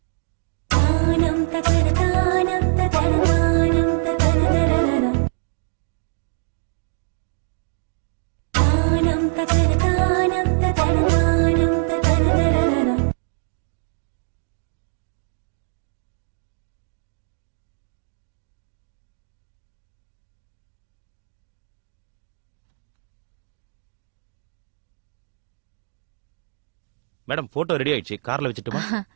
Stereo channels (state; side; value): silent; left; digital silence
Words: மேடம் போட்டோ ரெடி ஆயிடுச்சு, கார்ல வச்சுட்டுமா?